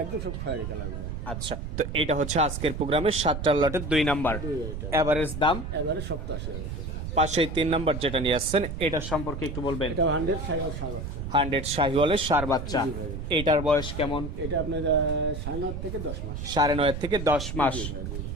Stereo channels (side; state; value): right; noise; rumble, 6 dB below the sound